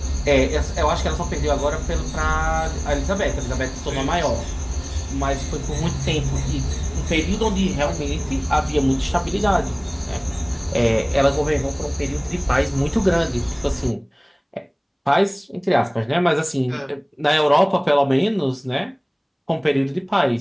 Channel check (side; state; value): both; identical; correlation 1.00